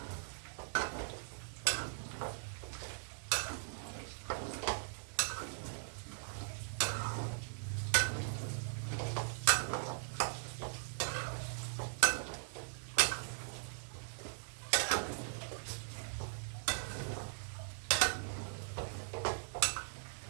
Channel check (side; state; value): left; silent; digital silence